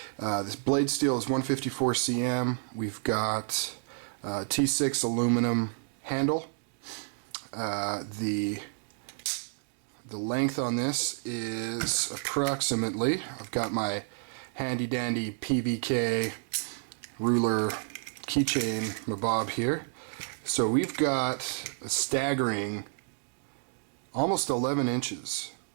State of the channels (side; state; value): left; silent; digital silence